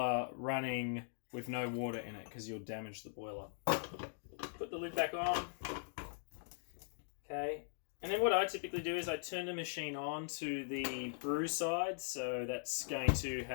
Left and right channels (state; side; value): silent; right; digital silence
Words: running with no water in it, because you'll damage the boiler. Put the lid back on. Okay. And then what I typically do is I turn the machine on to the brew side, so that's going to